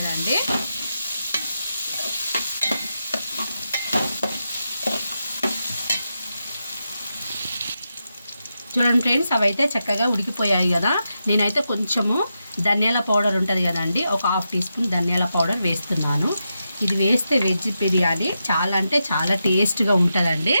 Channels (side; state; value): both; inverted; correlation -0.87